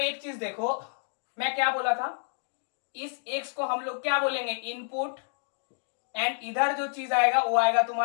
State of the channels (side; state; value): right; silent; digital silence